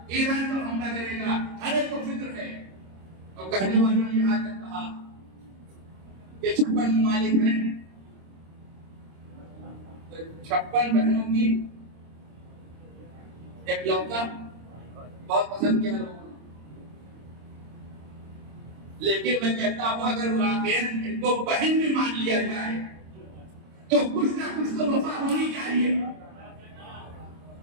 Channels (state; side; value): late; left; 26 ms